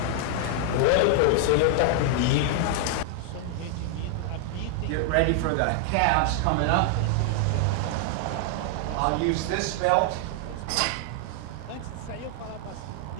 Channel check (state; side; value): different; both; correlation 0.00